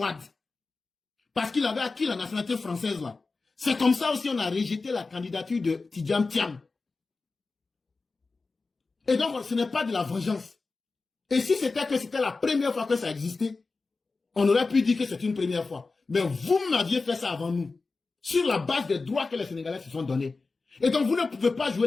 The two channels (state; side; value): quieter; right; 3.9 dB